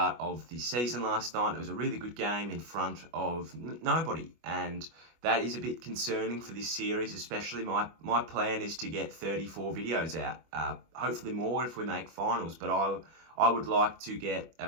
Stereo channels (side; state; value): left; late; 25 ms